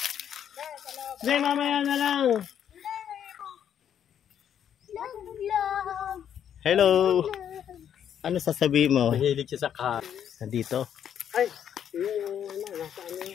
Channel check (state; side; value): quieter; right; 9.2 dB